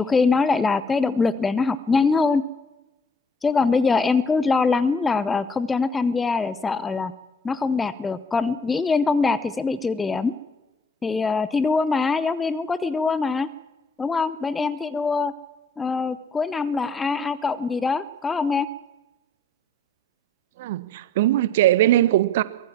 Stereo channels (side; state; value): both; normal; correlation 0.60